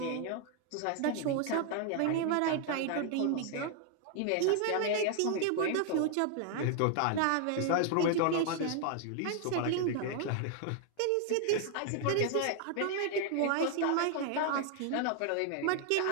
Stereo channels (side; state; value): both; different; correlation 0.00